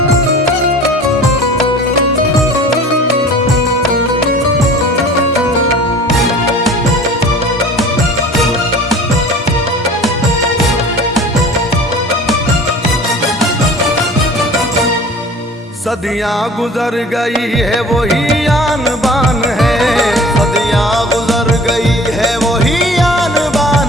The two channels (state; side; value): normal; both; correlation 0.44